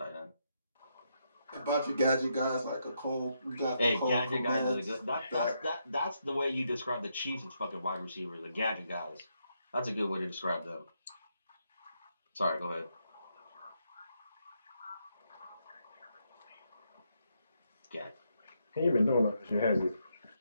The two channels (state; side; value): inverted; both; correlation -0.79